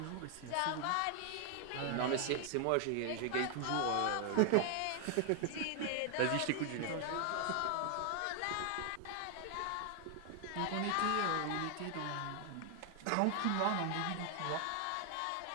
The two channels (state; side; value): different; both; correlation 0.00